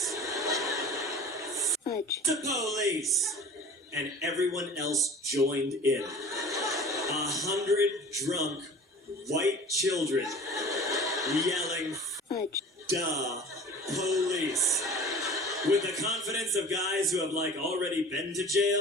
Fudge. The police! And everyone else joined in. 100 drunk white children yelling, fudge. Duh, police. With the confidence of guys who have, like, already been to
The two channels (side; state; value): both; normal; correlation 0.41